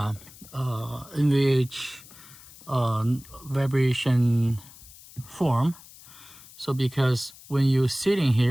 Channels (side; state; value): left; noise; hiss, 20 dB below the sound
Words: NVH vibration form. So because when you're sitting